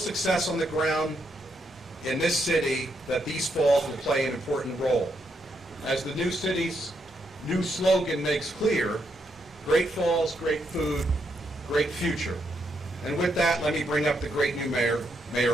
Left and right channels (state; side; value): normal; both; correlation 0.78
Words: on the ground in this city that these falls will play an important role. As the new city's new slogan makes clear, great falls, great food, great future. And with that, let me bring up the great new mayor,